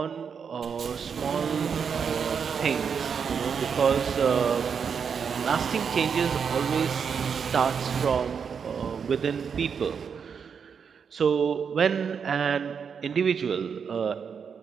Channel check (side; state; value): left; quieter; 6.6 dB